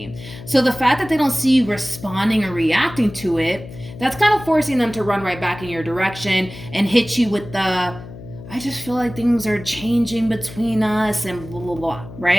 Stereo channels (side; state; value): left; noise; hum, 14 dB below the sound